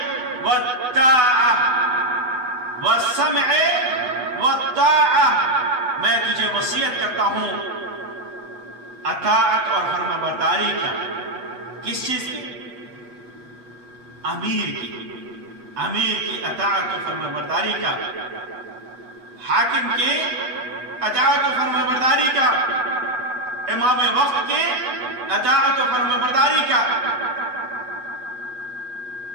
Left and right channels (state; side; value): late; left; 8.0 ms